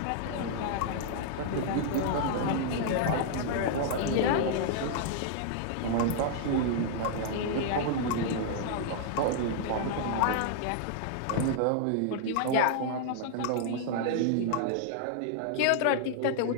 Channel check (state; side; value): different; both; correlation -0.01